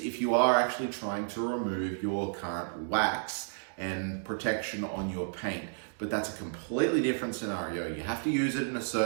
if you are actually trying to remove your current wax and protection on your paint. But that's a completely different scenario. You have to use it in a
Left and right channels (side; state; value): left; silent; digital silence